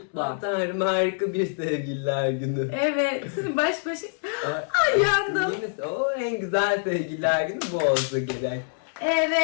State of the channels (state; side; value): silent; right; 61 dB below the other